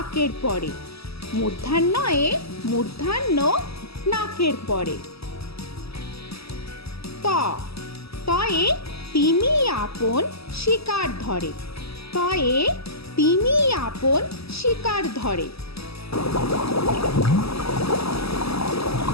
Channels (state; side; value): late; right; 0.78 ms